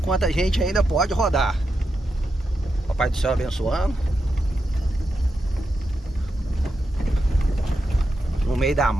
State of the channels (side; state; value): both; normal; correlation 0.86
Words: a gente ainda pode rodar. Papai do céu abençoando. No meio da